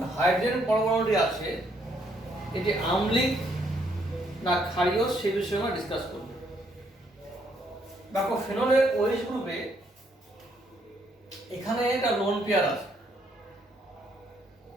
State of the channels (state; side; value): normal; both; correlation 0.71